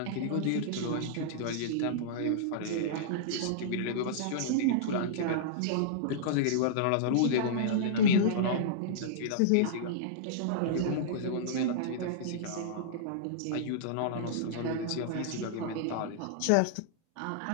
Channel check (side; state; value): both; different; correlation -0.02